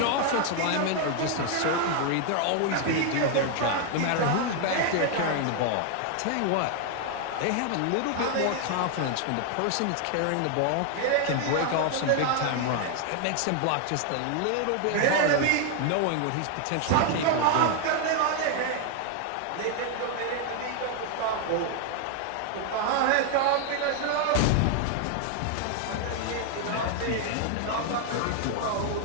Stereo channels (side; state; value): both; different; correlation 0.00